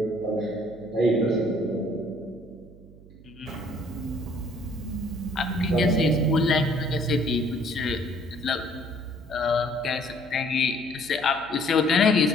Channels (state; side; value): noise; right; hum, 21 dB below the sound